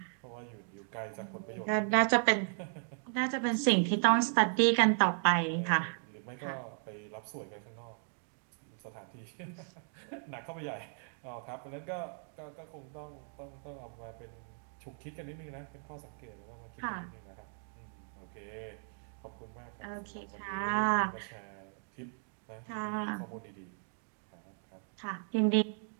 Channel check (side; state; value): left; silent; 54 dB below the other